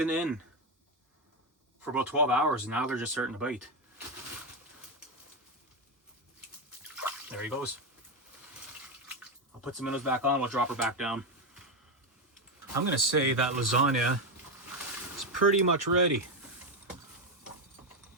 in for about 12 hours and now they're just starting to bite. There he goes. I'll put some minnows back on, we'll drop her back down. I'm gonna say that lasagna is pretty much ready.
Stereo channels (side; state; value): both; normal; correlation 0.08